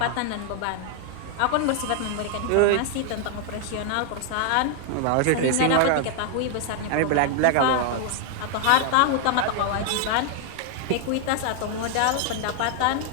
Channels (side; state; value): both; different; correlation 0.00